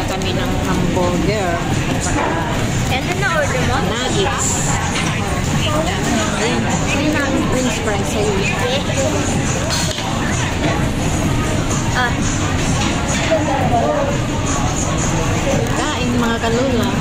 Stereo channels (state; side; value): identical; both; correlation 1.00